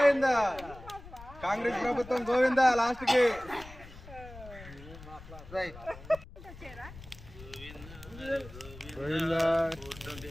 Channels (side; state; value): left; noise; rumble, 17 dB below the sound